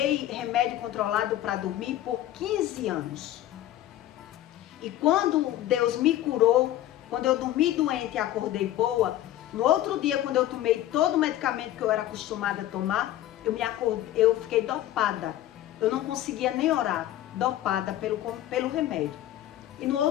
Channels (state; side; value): quieter; right; 13.5 dB